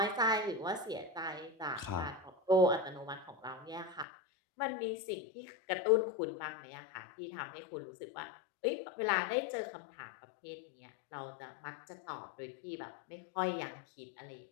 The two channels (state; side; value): drops out; right; at 4.0 s